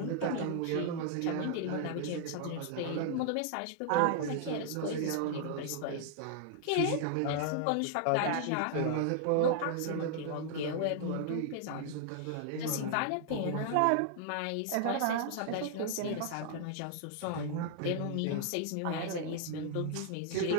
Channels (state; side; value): different; both; correlation 0.00